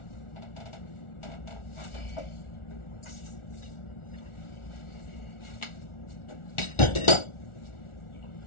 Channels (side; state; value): right; late; 1.4 ms